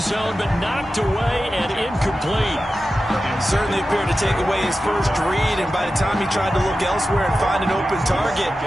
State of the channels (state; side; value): normal; both; correlation 0.93